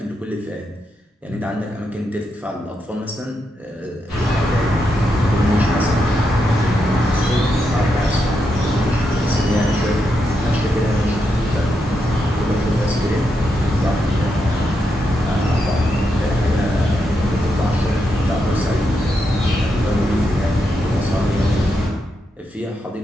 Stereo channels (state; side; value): normal; both; correlation 0.83